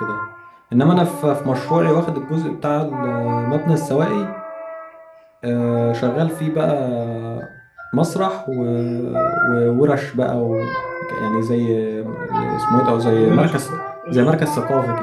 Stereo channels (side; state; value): both; identical; correlation 1.00